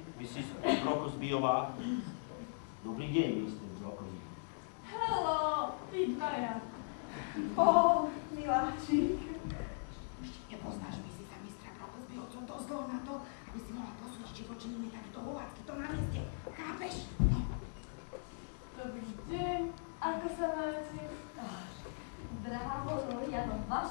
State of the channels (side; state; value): right; silent; digital silence